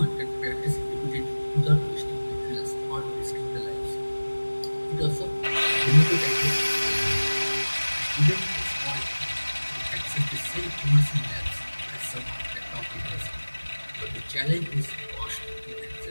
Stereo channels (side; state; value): both; inverted; correlation -1.00